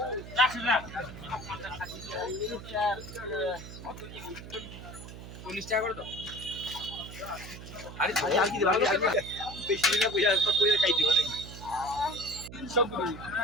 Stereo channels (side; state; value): right; noise; hum, 13 dB below the sound